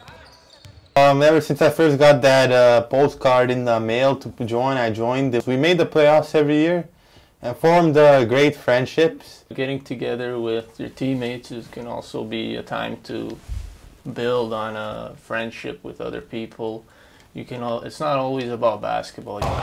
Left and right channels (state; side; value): identical; both; correlation 1.00